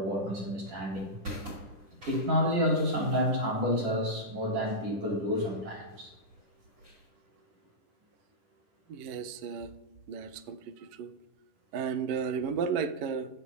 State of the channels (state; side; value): late; left; 10 ms